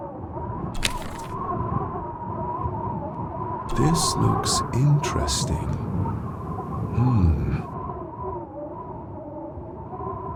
This looks interesting.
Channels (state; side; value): identical; both; correlation 1.00